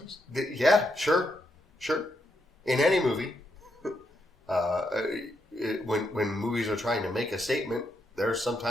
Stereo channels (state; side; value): normal; both; correlation 0.80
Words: Yeah, sure. In any movie, when movies are trying to make a statement, there are some